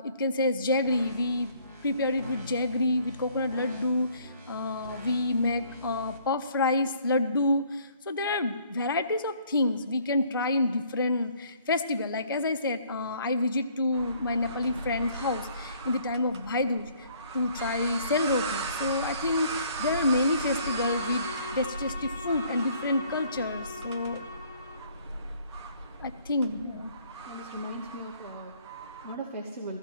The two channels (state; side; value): inverted; both; correlation -0.60